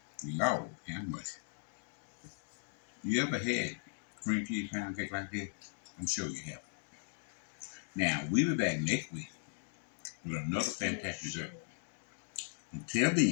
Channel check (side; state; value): right; silent; digital silence